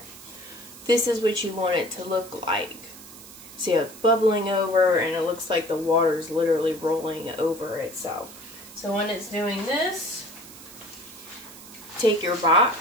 This is what you want it to look like. See how it's bubbling over, and it looks like the water's literally rolling over itself. So when it's doing this, take your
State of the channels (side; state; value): right; noise; hiss, 17 dB below the sound